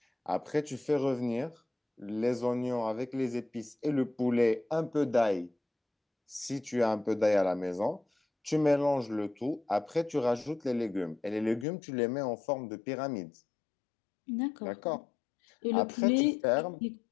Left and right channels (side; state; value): right; drops out; at 11.7 s